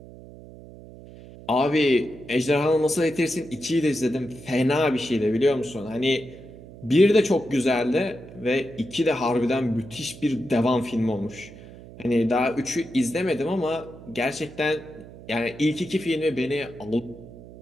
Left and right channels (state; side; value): noise; right; hum, 17 dB below the sound